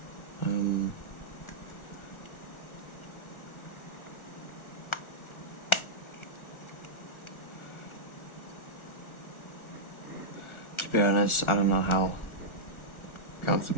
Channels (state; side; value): late; right; 1.4 ms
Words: To be honest, I don't know how